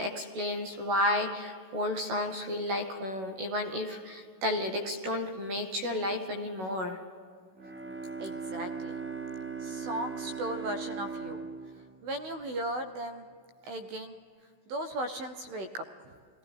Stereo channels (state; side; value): late; left; 16 ms